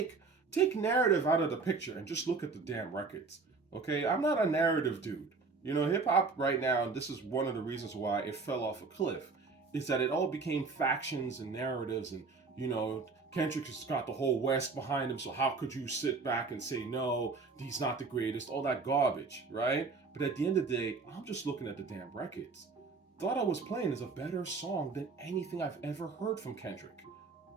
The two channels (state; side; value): quieter; left; 4.3 dB